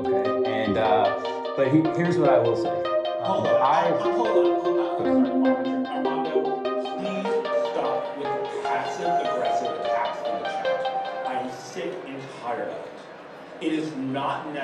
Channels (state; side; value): identical; both; correlation 1.00